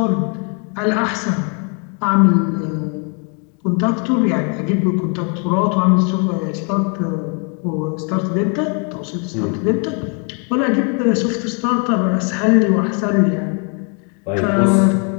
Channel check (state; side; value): quieter; right; 37.9 dB